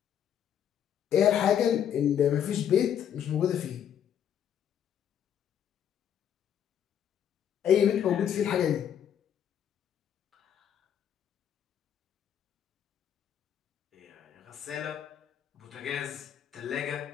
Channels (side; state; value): right; quieter; 9.3 dB